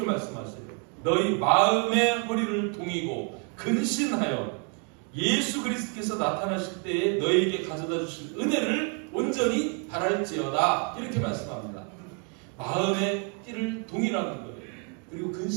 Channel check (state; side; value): quieter; left; 39.1 dB